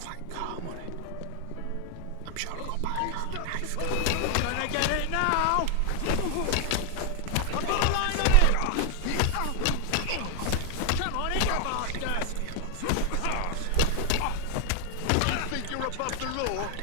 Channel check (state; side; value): different; both; correlation 0.00